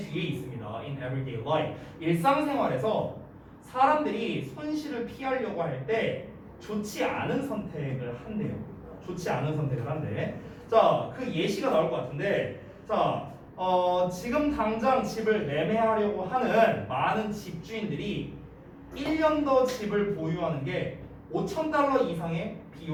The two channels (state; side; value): identical; both; correlation 1.00